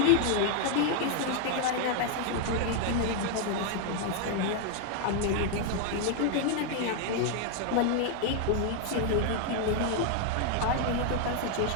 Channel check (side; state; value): both; different; correlation 0.00